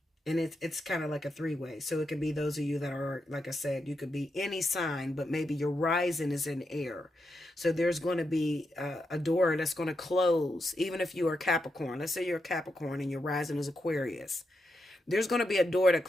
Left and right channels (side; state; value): both; normal; correlation 0.84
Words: And it's kind of like a three-way. So it could be those of you that are, like I said, you could be any sign, but maybe your rising is in air. So there's going to be a door that's going to close, even if you are Capricorn. Let's say you're a Capricorn and your rising is Aquarius. There's going to be a door to